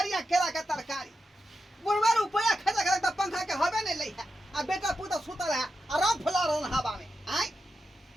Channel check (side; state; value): both; normal; correlation 0.89